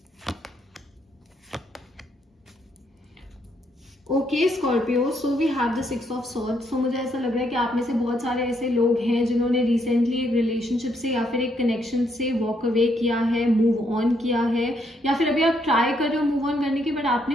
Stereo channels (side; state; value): both; normal; correlation 0.74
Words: Okay Scorpio, so we have the 6 of swords. So मुझे ऐसा लग रहा है कि आप में से बहुत सारे ऐसे लोग हैं जिन्होंने रिसेंटली एक रिलेशनशिप से या फिर एक कनेक्शन से वॉक अवे किया है, मूव ऑन किया है, या फिर अभी आप ट्राई कर रहे हो मूव ऑन करने की, बट